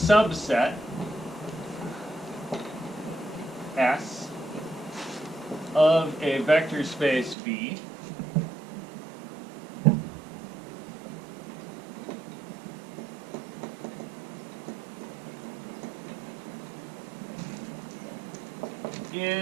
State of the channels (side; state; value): left; drops out; at 7.4 s